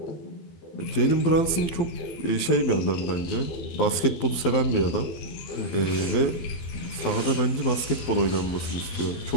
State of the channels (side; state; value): right; late; 12 ms